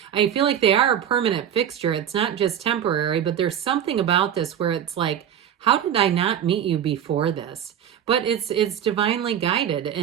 I feel like they are a permanent fixture. It's not just temporary, but there's something about this where it's like, how did I not meet you before this? But it's divinely guided.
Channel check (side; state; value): left; quieter; 9.5 dB